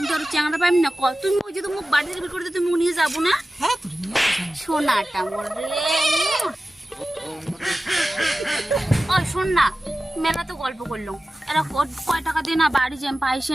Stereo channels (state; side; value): normal; both; correlation 0.95